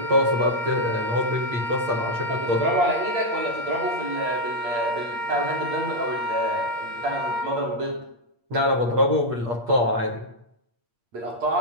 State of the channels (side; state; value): left; late; 8.5 ms